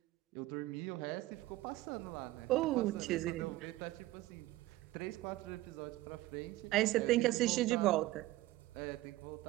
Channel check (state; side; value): quieter; left; 17.3 dB